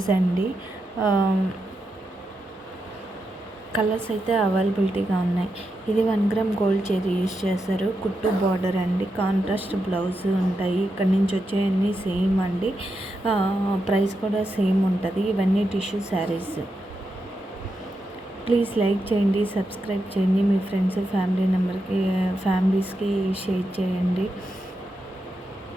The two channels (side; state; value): both; normal; correlation 0.86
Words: అండి. కలర్స్ అయితే అవైలబిలిటీగా ఉన్నాయి. ఇది 1 గ్రామ్ గోల్డ్ చైరీ యూజ్ చేస్తారు. కుట్టు బార్డర్ అండి, కాంట్రాస్ట్ బ్లౌజ్ ఉంటాయి. ఇక్కడ నుంచి వచ్చేవన్నీ సేమ్ అండి. ప్రైస్ కూడా సేమ్ ఉంటుంది. ఇవన్నీ టిష్యూ శారీస్. ప్లీజ్ లైక్ చేయండి, సబ్స్క్రైబ్ చేయండి, మీ ఫ్రెండ్స్ ఫ్యామిలీస్కి షేర్ చేయండి.